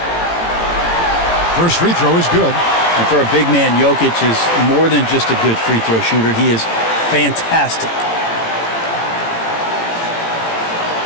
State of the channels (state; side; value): late; right; 18 ms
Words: First free throw is good. And for a big man, Jokic is more than just a good free throw shooter. He is fantastic.